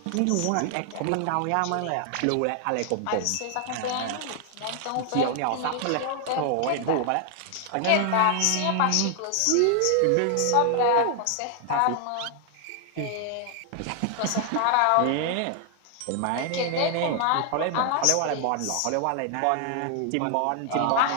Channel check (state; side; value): different; both; correlation 0.00